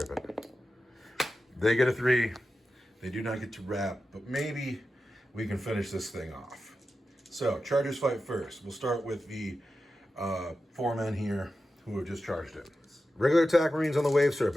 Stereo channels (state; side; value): normal; both; correlation 0.92